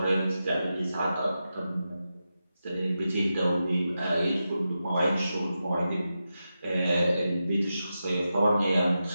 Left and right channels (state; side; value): inverted; both; correlation -0.90